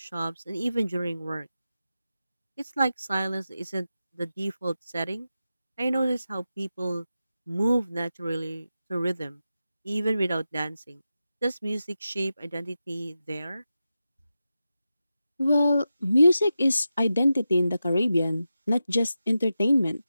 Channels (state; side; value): inverted; both; correlation -0.91